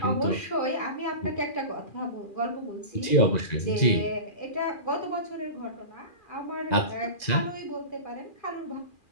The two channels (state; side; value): late; right; 2.4 ms